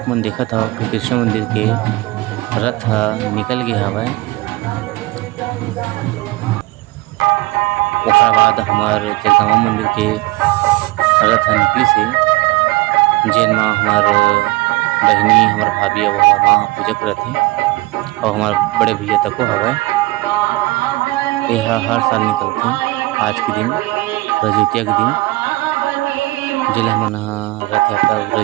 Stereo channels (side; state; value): left; quieter; 20.8 dB